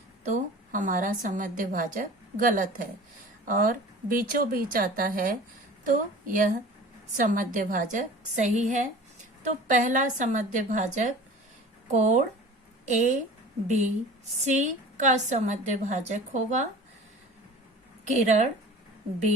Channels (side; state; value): both; normal; correlation 0.40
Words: तो हमारा समद्य भाजक गलत है, और बीचों बीच आता है तो यह समद्य भाजक सही है। तो पहला समद्य भाजक कोण ए बी सी का समद्य भाजक होगा किरण